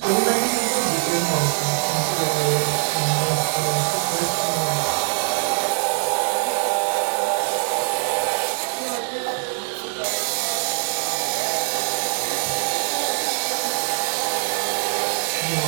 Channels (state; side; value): silent; left; digital silence